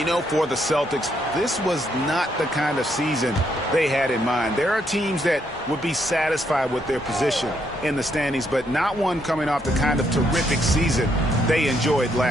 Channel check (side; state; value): both; normal; correlation 0.75